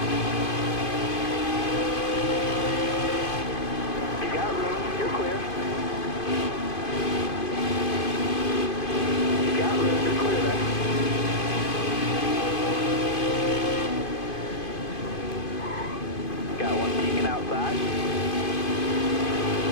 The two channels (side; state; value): right; late; 2.5 ms